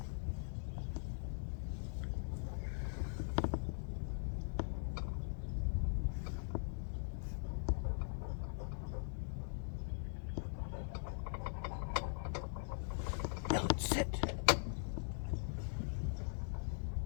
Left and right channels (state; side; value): silent; right; digital silence